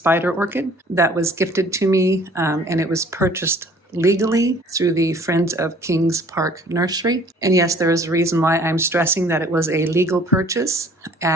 orchid that was gifted to me, and it was purchased legally through the Friends of Kings Park Nursery. And yes, there is a reason why I'm stressing that it was a legal purchase,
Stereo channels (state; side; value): normal; both; correlation 0.54